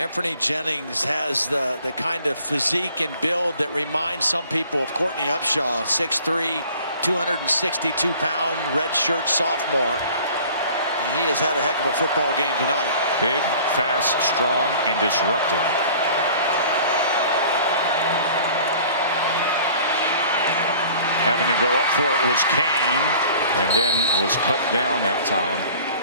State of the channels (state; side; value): inverted; both; correlation -0.49